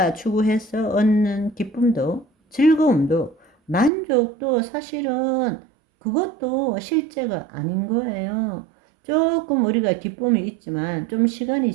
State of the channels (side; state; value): left; drops out; at 3.9 s